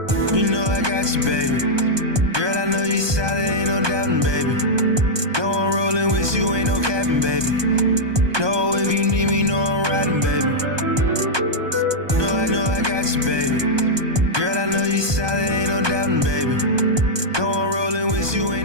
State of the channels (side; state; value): left; late; 1.2 ms